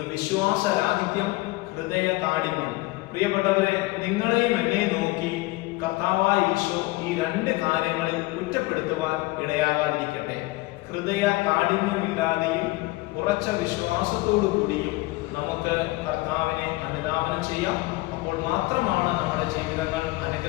വിശ്വാസരാഹിത്യം, ഹൃദയ കാഠിന്യം. പ്രിയപ്പെട്ടവരെ, നിങ്ങളെയും എന്നെ നോക്കി കർത്താവായ ഈശോ ഈ 2 കാര്യങ്ങളിൽ കുറ്റപ്പെടുത്തുവാൻ ഇടയാകാതിരിക്കട്ടെ. ഹൃദയ കാഠിന്യമില്ലാതെയും ഉറച്ച വിശ്വാസത്തോടു കൂടിയും നമുക്ക് കർത്താവിനെ അനുധാവനം ചെയ്യാം. അപ്പോൾ മാത്രമാണ് നമ്മുടെ ജീവിതങ്ങൾ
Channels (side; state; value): right; quieter; 21.2 dB